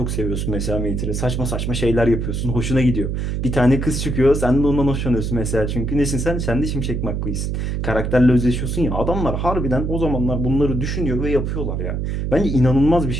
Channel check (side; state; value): right; noise; hum, 1 dB below the sound